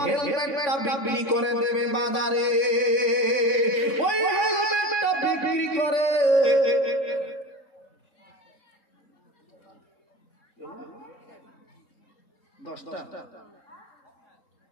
হেলমেটটা বিক্রি করে দেবে বাজারে, ওই হেলমেটটা বিক্রি করে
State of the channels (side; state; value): right; late; 3.6 ms